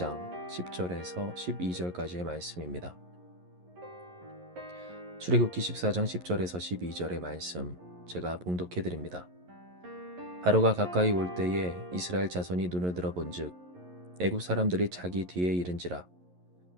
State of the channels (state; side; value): late; left; 11 ms